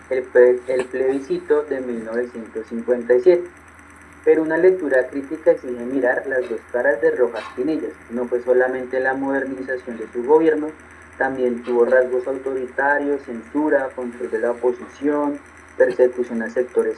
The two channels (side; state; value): both; identical; correlation 1.00